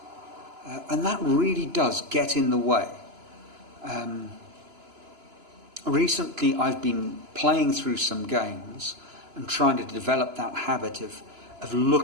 And that really does get in the way. Recently I've been playing through some games and trying to develop that habit of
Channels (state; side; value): late; left; 2.9 ms